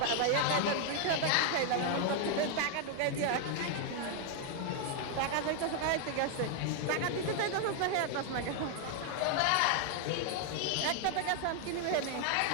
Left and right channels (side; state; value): both; different; correlation 0.00